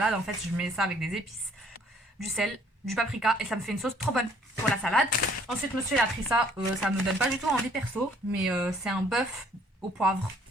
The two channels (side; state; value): both; normal; correlation 0.61